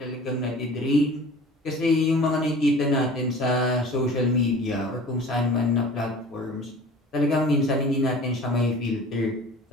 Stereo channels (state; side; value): normal; both; correlation 0.43